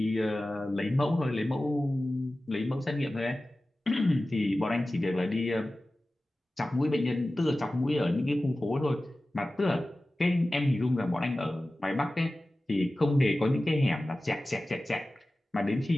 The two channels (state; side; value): normal; both; correlation 0.96